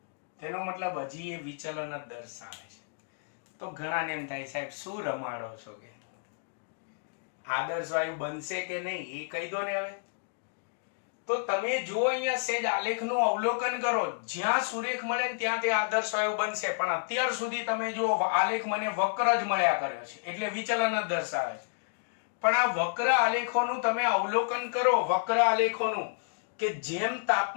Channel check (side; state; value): right; silent; digital silence